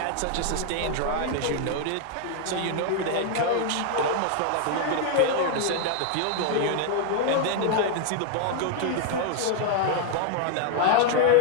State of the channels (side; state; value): both; different; correlation 0.00